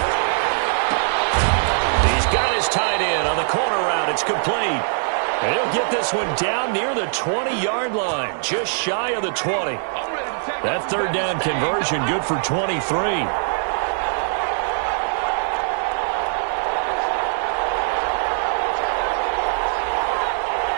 He's got his tight end on the corner route. It's complete. And he'll get this one down near the 20-yard line, just shy of the 20. That 3rd down conversion good for 23.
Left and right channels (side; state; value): left; silent; digital silence